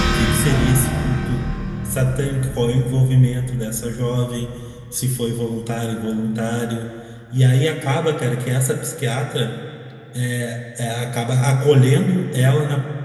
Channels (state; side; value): identical; both; correlation 1.00